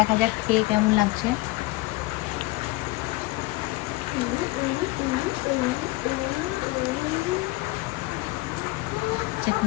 যাক খেয়ে কেমন লাগছে।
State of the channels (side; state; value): right; quieter; 21.2 dB